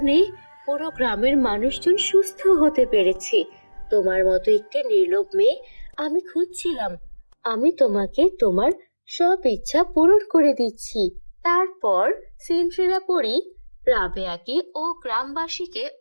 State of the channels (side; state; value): both; inverted; correlation -1.00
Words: পুরো গ্রামের মানুষজন সুস্থ হতে পেরেছে। তোমার মতো একটি নির্লোভ মেয়ে আমি খুঁজছিলাম। আমি তোমাকে তোমার সব ইচ্ছা পূরণ করে দিচ্ছি। তারপর সিন্ড্রেলা পরী রাবেয়াকে ও গ্রামবাসীকে